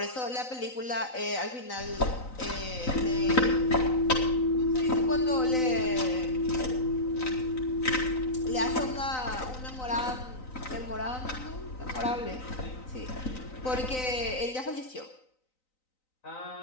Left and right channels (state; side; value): late; right; 3.9 ms